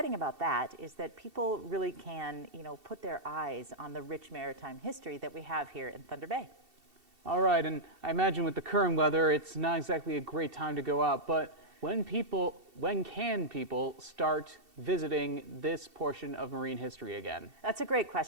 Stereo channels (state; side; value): late; left; 2.7 ms